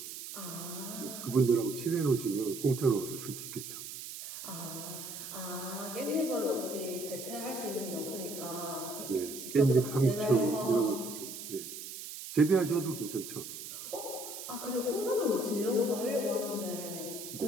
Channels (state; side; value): noise; right; hiss, 9 dB below the sound